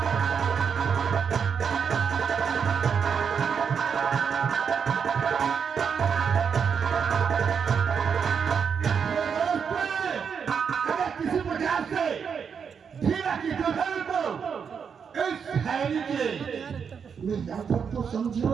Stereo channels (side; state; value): left; quieter; 6.7 dB